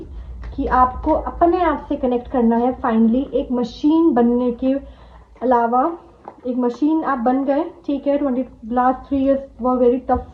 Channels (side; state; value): both; identical; correlation 1.00